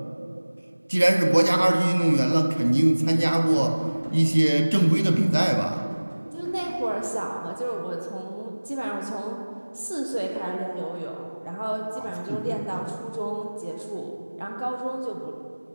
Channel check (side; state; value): both; inverted; correlation -1.00